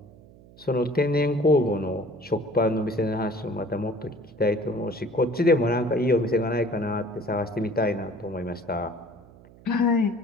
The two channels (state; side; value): noise; right; hum, 23 dB below the sound